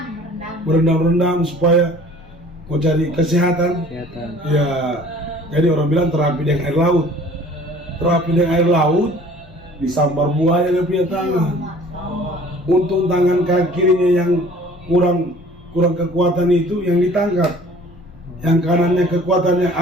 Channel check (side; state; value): both; normal; correlation 0.50